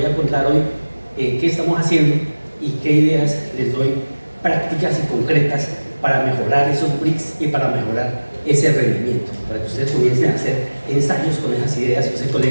a contar hoy, qué estamos haciendo y qué ideas les doy prácticas y concretas para mejorar esos bricks y para mejorar ese rendimiento, para que ustedes comiencen a hacer ensayos con esas ideas. Yo sé,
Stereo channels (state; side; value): inverted; both; correlation -1.00